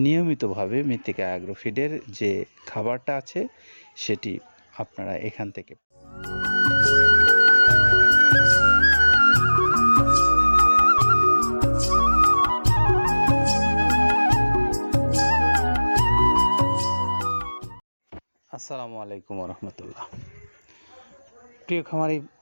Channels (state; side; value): inverted; both; correlation -1.00